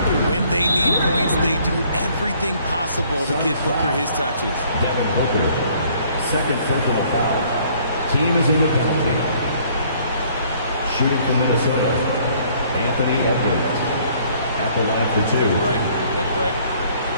When they need points, they do everything possible to get Booker his touches. Devin Booker, 2nd personal foul. Team is in the penalty. Shooting for Minnesota, Anthony Edwards at the line for two. Take a break.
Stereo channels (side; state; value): both; inverted; correlation -0.61